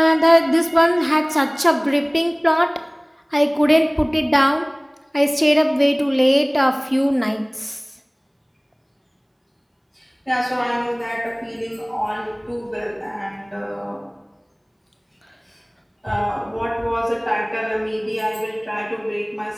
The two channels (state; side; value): identical; both; correlation 1.00